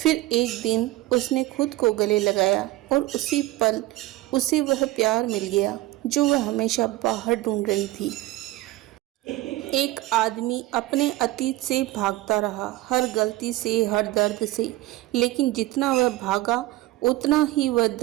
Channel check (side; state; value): left; quieter; 17.3 dB